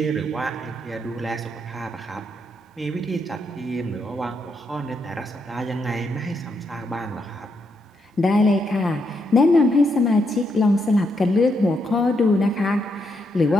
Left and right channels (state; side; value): normal; both; correlation 0.79